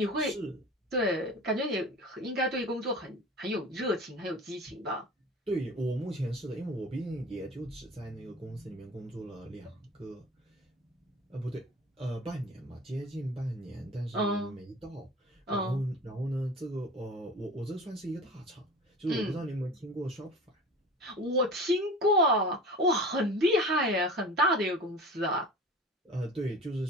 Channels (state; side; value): normal; both; correlation 0.38